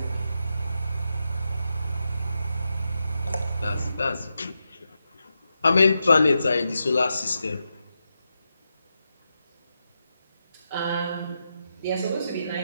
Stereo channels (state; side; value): inverted; both; correlation -0.87